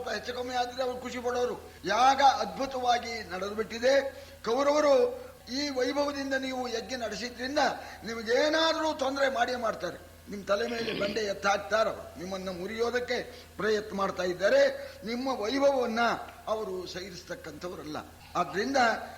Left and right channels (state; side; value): identical; both; correlation 1.00